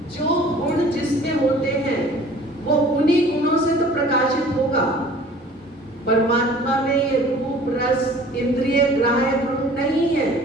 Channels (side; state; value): both; normal; correlation 0.48